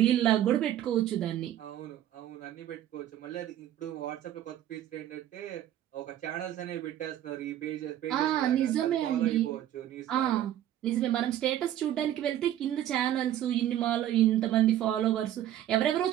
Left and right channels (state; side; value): quieter; left; 12.0 dB